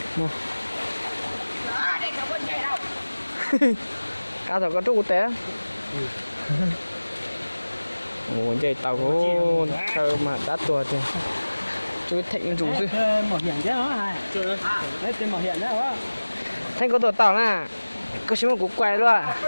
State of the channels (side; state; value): both; inverted; correlation -1.00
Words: Cá thầu có trúc té. Ồ, chạy tàu có thơ mà đắt tuột thì chú Thịnh rủ chứ. Mỏ hiện chứ hả? Chưa. Đấy tên mỏ hiện đấy hả? Thanh có tuột tàu nè. Có xíu một cú quay luôn à.